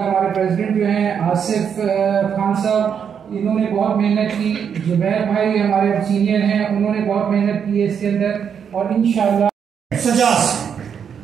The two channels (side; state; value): left; quieter; 7.5 dB